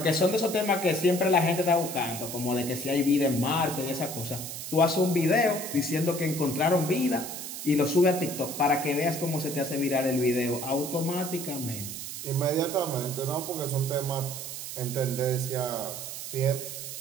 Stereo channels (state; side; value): noise; right; hiss, 8 dB below the sound